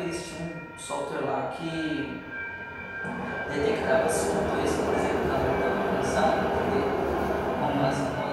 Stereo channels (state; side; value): identical; both; correlation 1.00